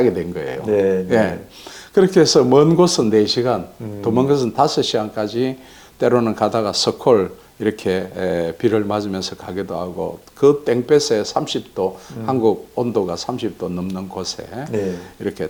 된 거예요. 네. 예. 그렇게 해서 먼 곳은 4시간, 더 먼 곳은 5시간까지 때로는 가다가 서콜 이렇게 비를 맞으면서 가기도 하고 그 땡볕에 30도 한국 온도가 30도 넘는 곳에 네. 이렇게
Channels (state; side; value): identical; both; correlation 1.00